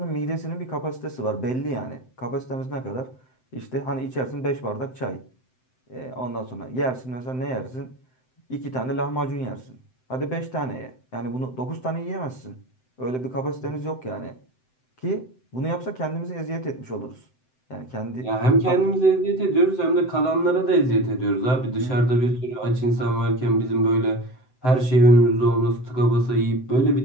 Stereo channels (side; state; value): right; late; 7.8 ms